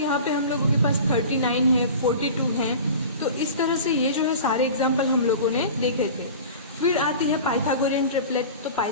पे हम लोगों के पास 39 है, 42 है। तो इस तरह से ये जो है सारे एग्जाम्पल हम लोगों ने देखे थे। फिर आती है पाइथागोरियन ट्रिपलेट। तो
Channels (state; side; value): inverted; both; correlation -0.37